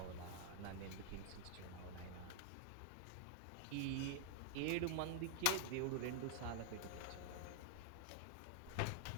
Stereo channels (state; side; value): different; both; correlation -0.01